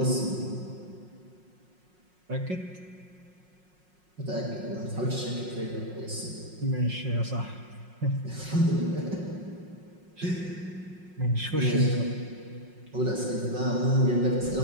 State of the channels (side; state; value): left; late; 5.5 ms